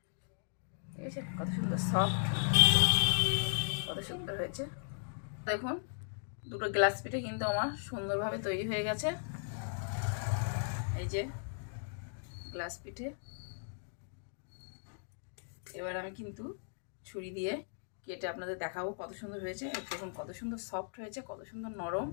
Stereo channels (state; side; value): silent; right; digital silence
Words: ঠিক আছে, কত সুন্দর সফট, কত সুন্দর হয়েছে। দেখুন দুটো গ্লাস পিঠে কিন্তু আমার সুন্দরভাবে তৈরি হয়ে গেছে। এই যে গ্লাস পিঠে। এবার আমি কিন্তু ছুরি দিয়ে কেটে আপনাদের দেখাবো কত সুন্দর হয়েছে। দেখুন কত সুন্দর সফট হয়েছে, কত সুন্দর নরম,